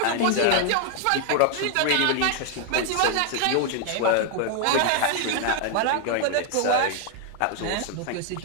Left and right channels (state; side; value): different; both; correlation 0.00